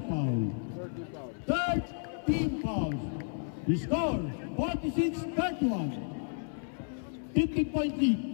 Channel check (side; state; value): right; silent; 56 dB below the other